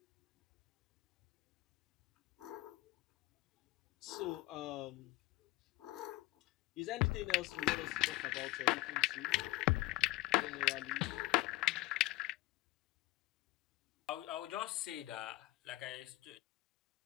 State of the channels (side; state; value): right; quieter; 19.3 dB